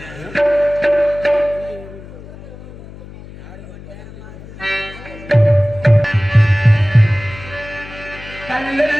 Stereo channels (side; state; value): left; noise; hum, 16 dB below the sound